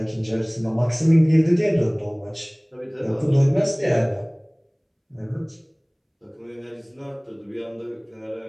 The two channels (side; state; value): both; identical; correlation 1.00